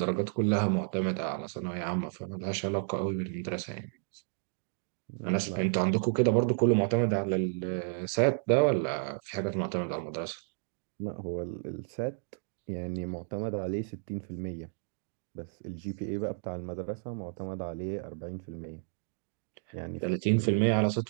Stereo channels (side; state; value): left; silent; digital silence